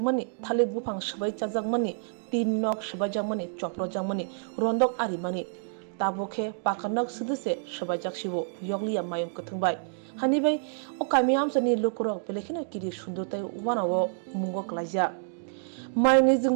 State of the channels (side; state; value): left; silent; digital silence